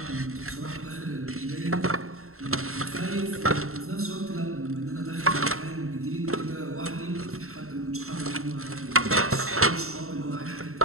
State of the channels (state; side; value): late; left; 0.63 ms